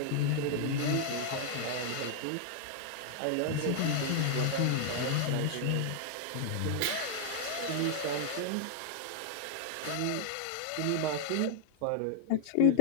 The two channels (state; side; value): different; both; correlation 0.00